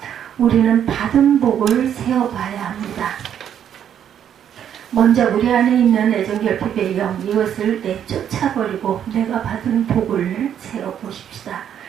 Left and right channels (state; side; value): quieter; left; 9.4 dB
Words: 우리는 받은 복을 세어봐야 합니다. 먼저 우리 안에 있는 애정결핍의 영, 이것을 내쫓아버리고 내가 받은 복을 세어보십시다.